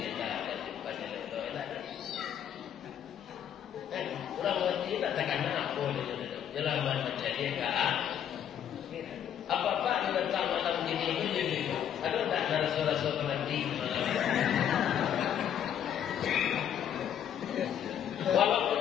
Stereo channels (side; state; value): right; quieter; 9.5 dB